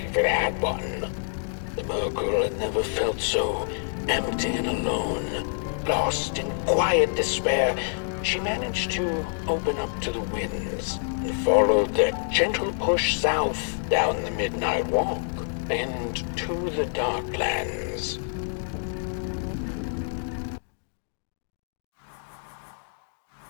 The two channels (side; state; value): right; silent; digital silence